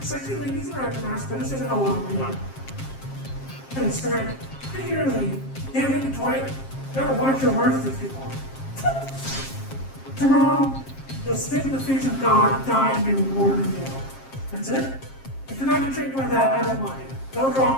sexy ladies and actors, better say that along with me. And it's great. Particularly, damn it, Dwight, gotta watch your words with people. Tomorrow, you'll spit in the face of God, die, and be rewarded in the That's it? If you're not intrigued by that, I don't mind. Go draw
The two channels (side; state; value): right; late; 7.5 ms